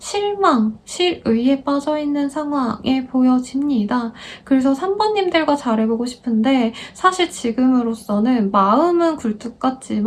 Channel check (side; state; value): both; identical; correlation 1.00